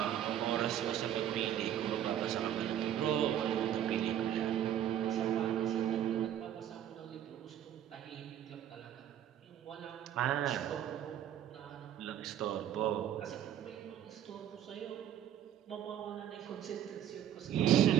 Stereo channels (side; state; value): left; quieter; 10.6 dB